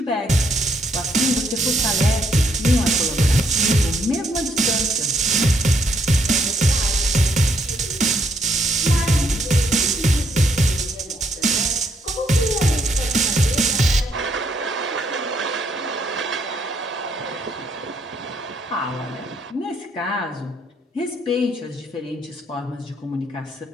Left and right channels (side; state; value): both; normal; correlation 0.72